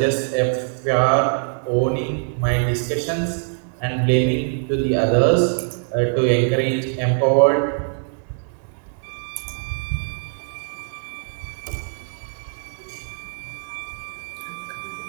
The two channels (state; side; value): silent; left; digital silence